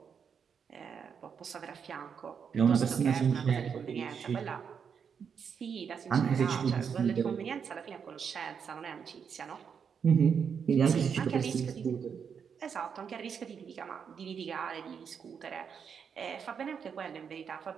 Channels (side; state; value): left; quieter; 6.9 dB